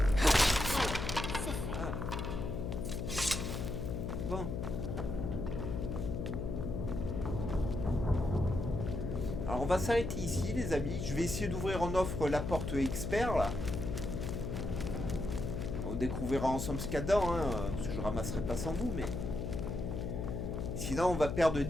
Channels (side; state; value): left; noise; hum, 3 dB below the sound